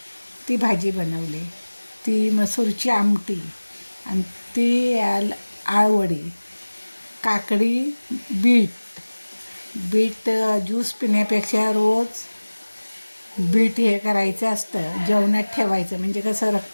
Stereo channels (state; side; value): inverted; both; correlation -1.00